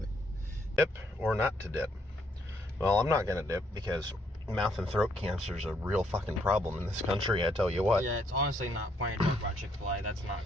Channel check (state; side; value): normal; both; correlation 0.71